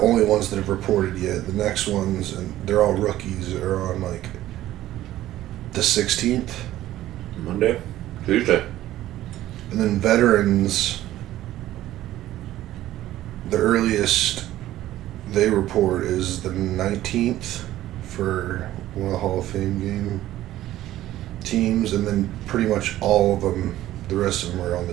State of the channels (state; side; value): quieter; left; 14.2 dB